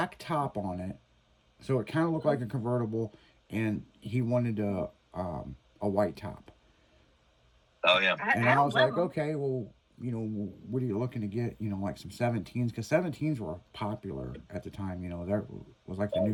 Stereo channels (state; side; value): identical; both; correlation 1.00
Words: top on it. So it kind of looked like a convertible. And he wanted a white top. Oh, yeah. And I was like, okay, well, you know, what are you looking to get? You know, like some 17s. Because 17s were popular at the time. You know, that was like the